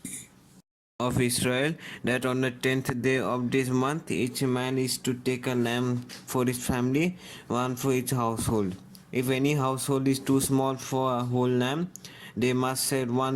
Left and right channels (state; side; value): identical; both; correlation 1.00